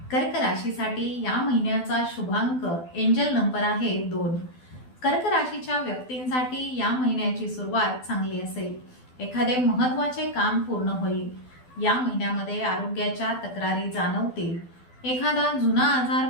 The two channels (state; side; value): late; right; 12 ms